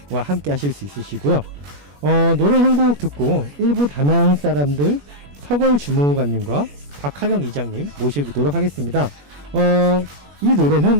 함께 하실 수 있으시고요. 노래 한 곡 듣고 1부 담양 사람들 서걸 주무관님과 박하경 이장님 모시도록 하겠습니다. 이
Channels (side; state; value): left; late; 21 ms